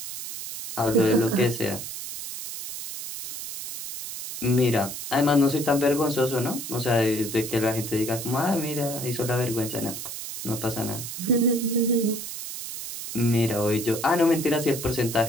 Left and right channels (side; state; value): right; noise; hiss, 8 dB below the sound